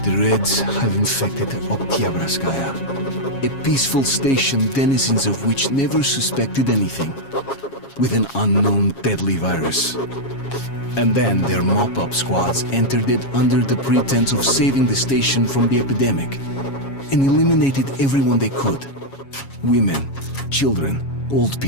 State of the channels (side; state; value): right; late; 7.3 ms